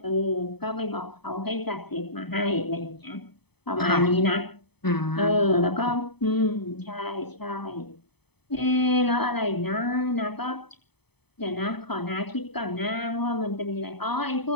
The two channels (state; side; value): late; right; 0.98 ms